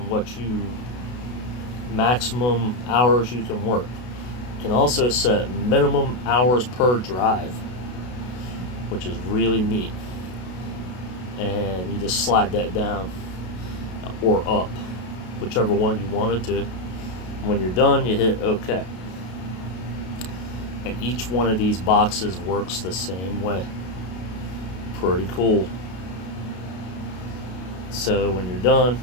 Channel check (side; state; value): right; late; 32 ms